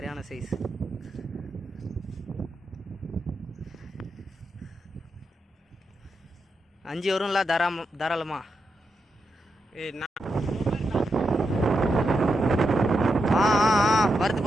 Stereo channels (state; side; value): normal; both; correlation 0.85